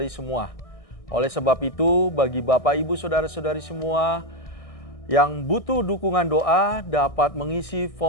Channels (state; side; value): late; right; 1.6 ms